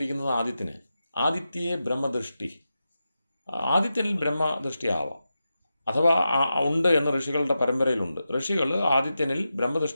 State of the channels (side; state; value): both; inverted; correlation -0.90